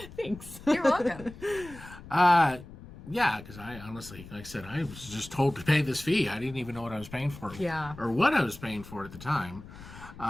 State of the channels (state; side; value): noise; left; rumble, 16 dB below the sound